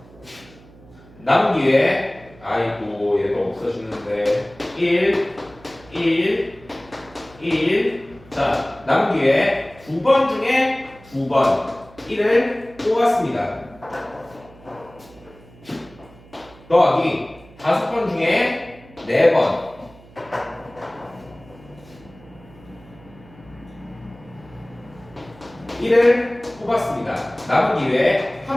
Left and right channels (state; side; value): noise; right; hum, 23 dB below the sound